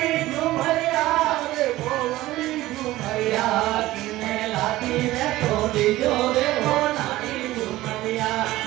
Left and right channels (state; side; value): quieter; left; 16.8 dB